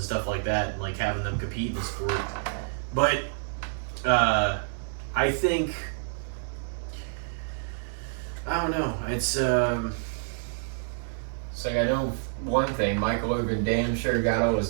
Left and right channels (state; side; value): silent; left; digital silence